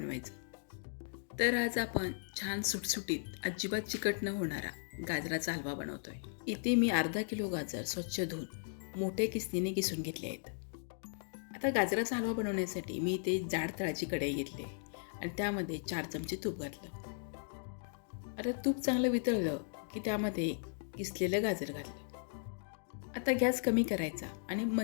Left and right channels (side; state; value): right; silent; digital silence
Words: तर आज आपण छान सुटसुटीत अजिबात चिकट न होणारा गाजराचा हलवा बनवतोय. इथे मी अर्धा किलो गाजर स्वच्छ धुवून मोठ्या किसणीने किसून घेतले आहेत. आता गाजराचा हलवा बनवण्यासाठी मी इथे जाड तळाची कढई घेतली आणि त्यामध्ये 4 चमचे तूप घातलं. आता तूप चांगलं वितळलं की त्यामध्ये किसलेलं गाजर घातलं. आता गॅस कमी करायचा आणि